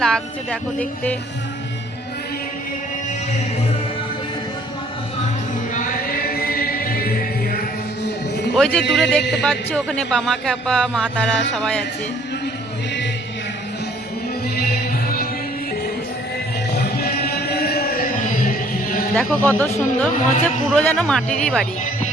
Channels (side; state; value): both; normal; correlation 0.59